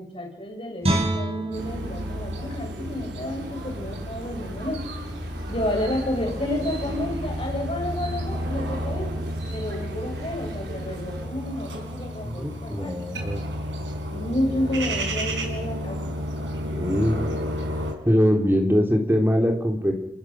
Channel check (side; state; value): both; normal; correlation 0.79